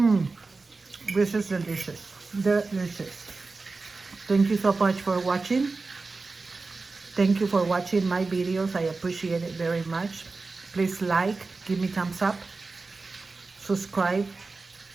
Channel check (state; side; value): quieter; left; 3.9 dB